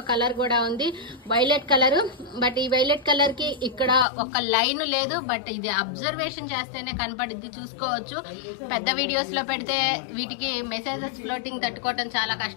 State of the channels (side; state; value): right; drops out; at 4.0 s